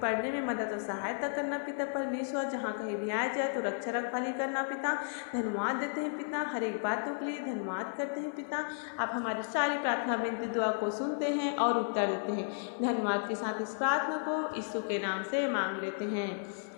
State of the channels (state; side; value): silent; right; 55 dB below the other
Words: पढ़ने में मदद और सहायता करना पिता परमेश्वर, जहाँ कहीं भी आया जाए तो रक्षा रखवाली करना पिता। धन्यवाद देते हैं पिता, हर एक बातों के लिए धन्यवाद करते हैं पिता। आप हमारी सारी प्रार्थना विनती दुआ को सुनते हैं और उत्तर देते हैं। धन्यवाद के साथ इस प्रार्थना को यीशु के नाम से मांग लेते हैं।